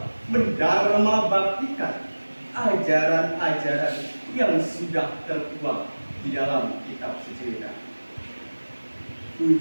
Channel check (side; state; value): both; inverted; correlation -1.00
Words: mendharma baktikan ajaran-ajaran yang sudah tertuang di dalam kitab suci Weda.